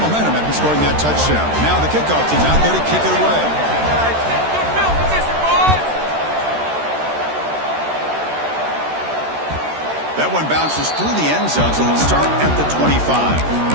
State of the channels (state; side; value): late; left; 13 ms